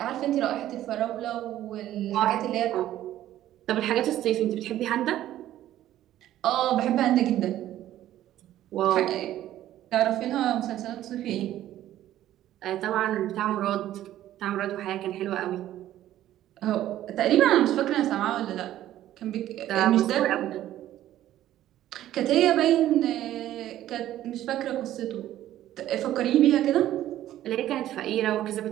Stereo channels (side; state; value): left; quieter; 13.1 dB